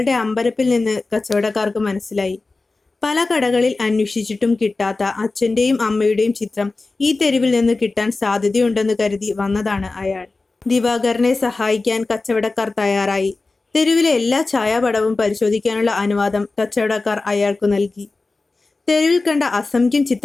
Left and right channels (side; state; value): right; quieter; 3.6 dB